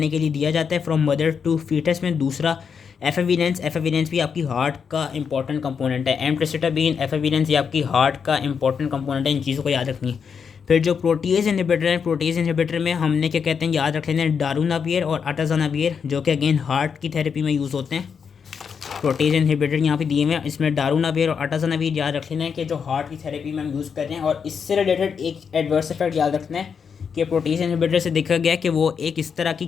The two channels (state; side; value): quieter; right; 6.5 dB